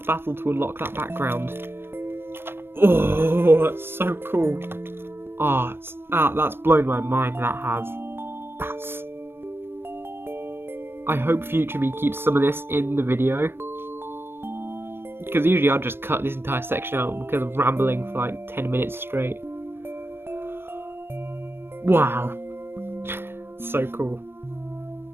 battle to unlock that background. Oh, that's so cool. That's blown my mind, that has. I hope Future Me keeps some of this in the video, because usually I'll just cut this entire section out because I'm rambling for like 10 minutes straight. Wow. So cool.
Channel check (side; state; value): left; late; 0.11 ms